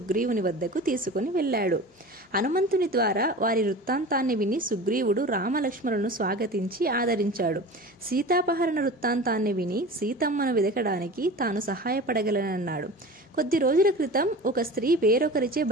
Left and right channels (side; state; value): both; normal; correlation 0.35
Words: వద్దకు తీసుకుని వెళ్ళాడు. హనుమంతుని ద్వారా వారి వృత్తాంతాన్ని విని సుగ్రీవుడు రామలక్ష్మణులను స్వాగతించి ఆదరించాడు. సీతాపహరణ వృత్తాంతాన్ని విని సీతమ్మను వెదకడానికి తాను సహాయపడగలనన్నాడు. కొద్ది రోజుల క్రితం ఒక స్త్రీ వేరొకరిచే